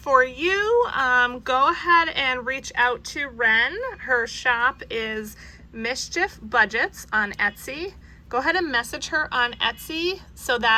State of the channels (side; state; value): both; identical; correlation 1.00